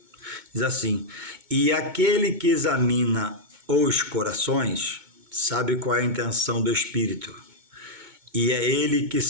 diz assim: e aquele que examina os corações sabe qual é a intenção do Espírito, e é ele que,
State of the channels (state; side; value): late; left; 2.2 ms